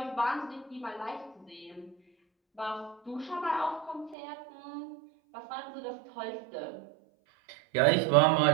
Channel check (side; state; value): left; drops out; at 4.2 s